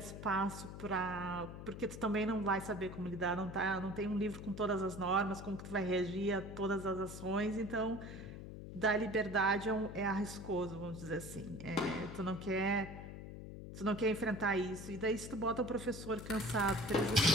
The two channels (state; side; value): noise; left; hum, 10 dB below the sound